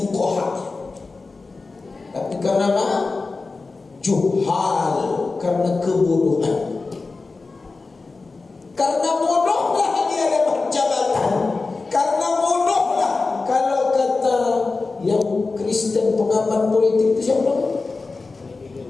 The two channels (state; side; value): quieter; right; 3.9 dB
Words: tapi karena apa? Juhal, karena kebodohan. Karena bodohlah dia dapat jabatan. Karena bodohlah, kalau kata yang Kristen pengamat politik itu siapa?